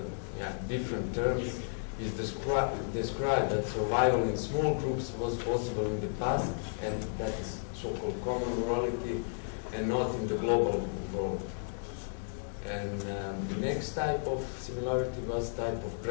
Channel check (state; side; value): silent; right; digital silence